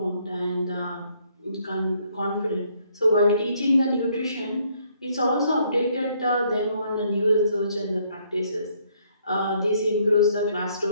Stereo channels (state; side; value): inverted; both; correlation -0.68